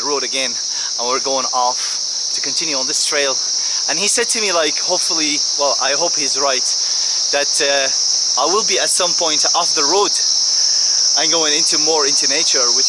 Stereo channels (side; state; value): both; identical; correlation 1.00